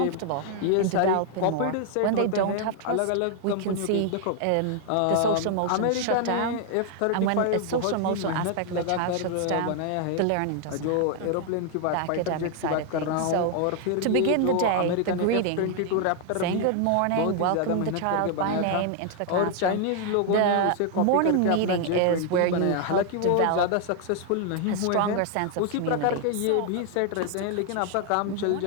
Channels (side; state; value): both; different; correlation 0.00